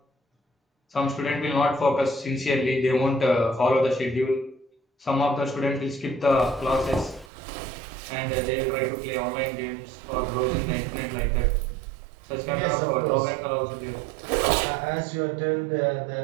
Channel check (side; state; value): left; drops out; at 7.3 s